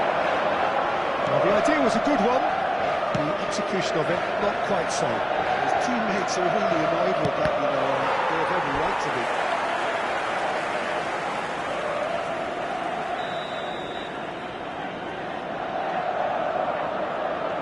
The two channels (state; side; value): identical; both; correlation 1.00